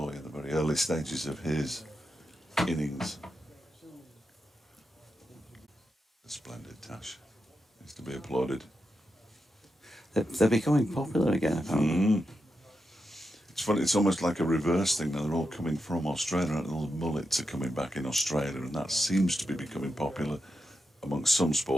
in the very early stages of his innings. A splendid Tash. Needs to be applauded. They're becoming popular again, apparently. It's funny, it's almost like a reverse thing now. They're all coming from Australia, and all the mullets are coming back in Australia, and that seems to be becoming popular amongst some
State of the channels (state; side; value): normal; both; correlation 0.87